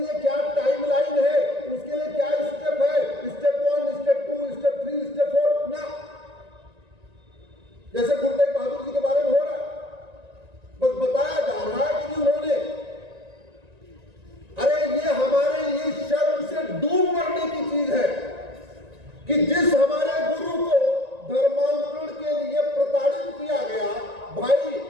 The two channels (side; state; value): left; late; 1.9 ms